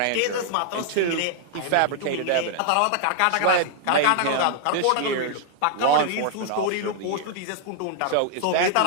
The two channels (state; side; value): different; both; correlation -0.01